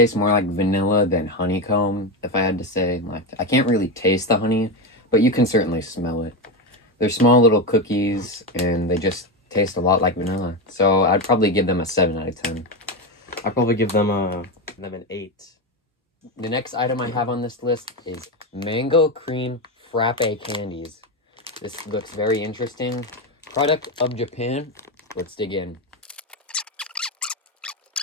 more like vanilla than honeycomb, if I had to say. Like, I can't really taste the honey, but you can certainly smell it. They're small little cookies, and they just taste a lot like vanilla. So I'd probably give them a 7 out of 10. I'd probably give them an 8. The next item I have on this list is mango cream frappe candies. This looks very interesting. Product of Japan. Let's dig in.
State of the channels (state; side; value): normal; both; correlation 0.14